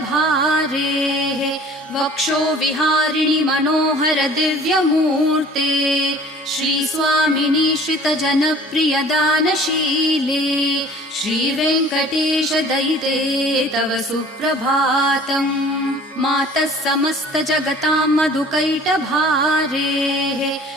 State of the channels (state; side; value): normal; both; correlation 0.49